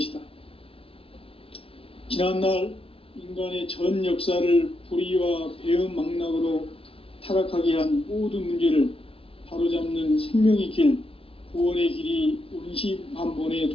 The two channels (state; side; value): late; right; 0.27 ms